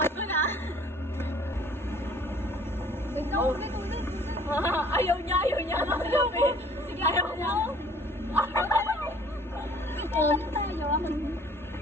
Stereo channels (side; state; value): both; normal; correlation 0.54